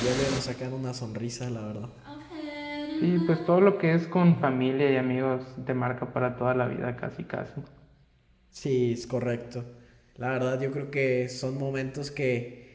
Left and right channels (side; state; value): both; identical; correlation 1.00